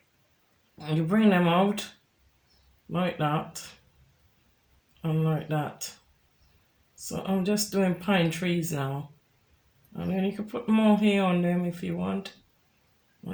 you bring them out like that and like that. So I'm just doing pine trees now, and then you can put more hair on them if you want.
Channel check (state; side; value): identical; both; correlation 1.00